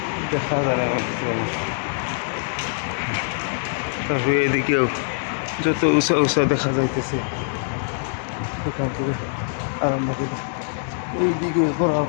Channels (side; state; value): right; silent; digital silence